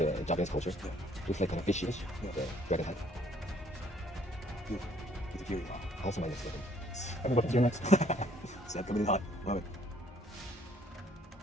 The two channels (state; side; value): normal; both; correlation 0.62